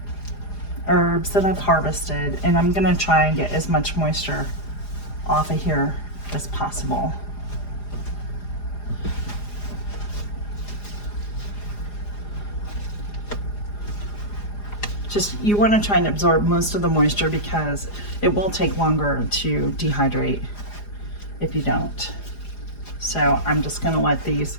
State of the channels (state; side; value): late; right; 4.9 ms